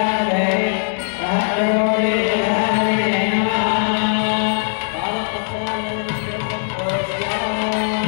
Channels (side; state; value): right; silent; digital silence